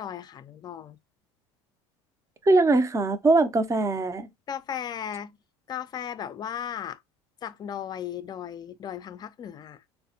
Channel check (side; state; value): both; normal; correlation 0.73